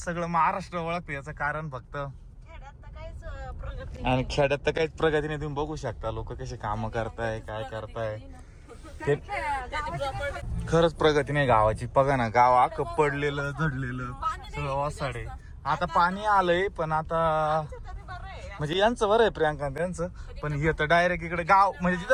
सगळं महाराष्ट्र ओळखते. याचं कारण फक्त आणि खेड्यात तर काहीच प्रगती नाही. तुम्ही बघू शकता लोक कसे काम करताय काय करताय. ते खरंच प्रगती नाही गावाची. बघा ना गाव अख्खं पडलेलं झडलेलं सगळं ओसाडे. आता पाणी आलंय पण आता म्हणजे यांचं बरं आहे प्रियांका त्यांचं. पण हे तर डायरेक्ट इकडे गाव म्हणजे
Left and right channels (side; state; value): both; identical; correlation 1.00